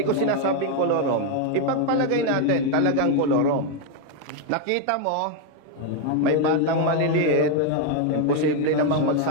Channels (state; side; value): different; both; correlation 0.01